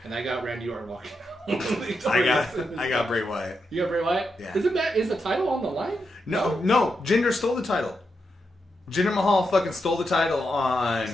And I got Randy Orton walking. I got Bray Wyatt. You got Bray Wyatt? Yeah. Is the title on the line? No. Jinder stole the title. Jinder Mahal fucking stole the title on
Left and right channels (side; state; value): both; normal; correlation 0.84